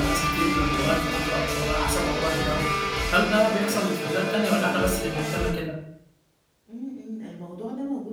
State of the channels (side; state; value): both; identical; correlation 1.00